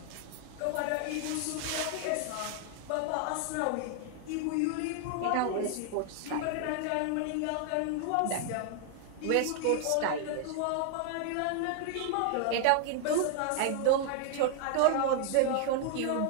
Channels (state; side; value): different; both; correlation 0.00